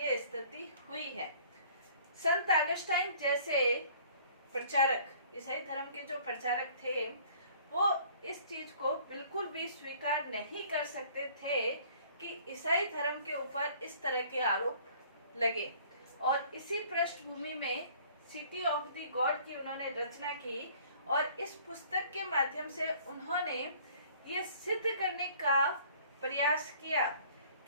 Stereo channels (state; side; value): inverted; both; correlation -0.54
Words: ये स्थिति हुई है। संत अगस्टाइन जैसे प्रचारक, ईसाई धर्म के जो प्रचारक थे, वो इस चीज को बिल्कुल भी स्वीकार नहीं कर सकते थे कि ईसाई धर्म के ऊपर इस तरह के आरोप लगे। और इसी पृष्ठभूमि में सिटी ऑफ द गॉड की उन्होंने रचना की। और इस पुस्तक के माध्यम से उन्होंने ये सिद्ध करने का प्रयास किया